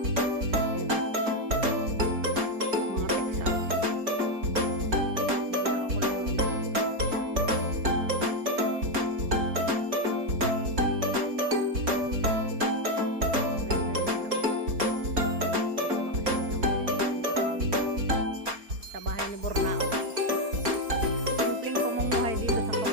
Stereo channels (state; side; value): late; left; 4.3 ms